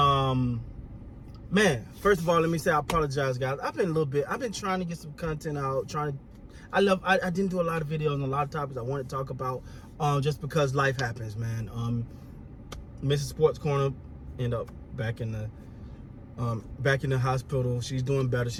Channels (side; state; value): both; identical; correlation 1.00